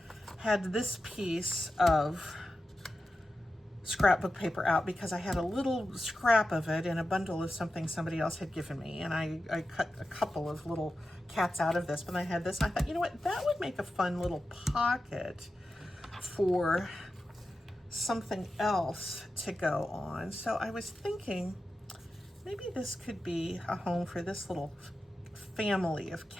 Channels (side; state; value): both; normal; correlation 0.92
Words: had this piece of scrapbook paper out because I had a little scrap of it in a bundle of something somebody else had given me, and I cut a couple of little cats out of this, but I had this, and I thought, you know what, that would make a fun little pocket for something else to go on. So I was thinking maybe this could be a home for this little family of